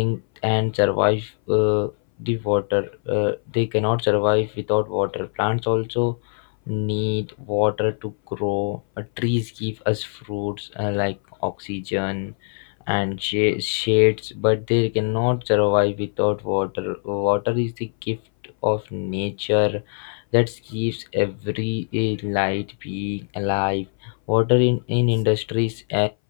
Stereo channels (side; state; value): right; silent; 60 dB below the other